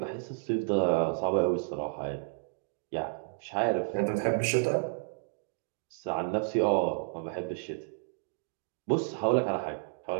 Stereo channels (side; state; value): left; silent; digital silence